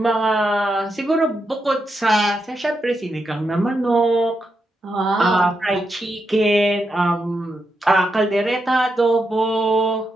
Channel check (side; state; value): both; normal; correlation 0.84